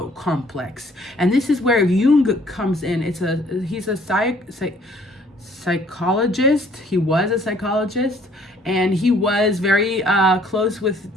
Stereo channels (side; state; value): both; normal; correlation 0.59